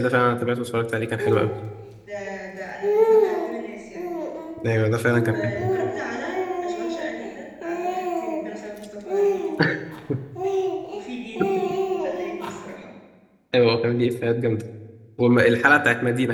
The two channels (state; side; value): identical; both; correlation 1.00